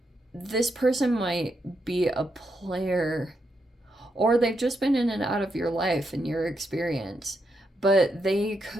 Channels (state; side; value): normal; both; correlation 0.81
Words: this person might be a player, or they've just been in and out of your life and your experience, but they